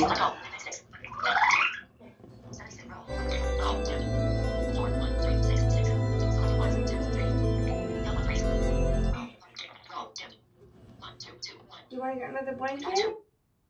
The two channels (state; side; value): identical; both; correlation 1.00